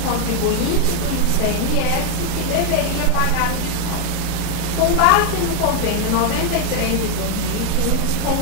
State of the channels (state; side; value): different; both; correlation 0.01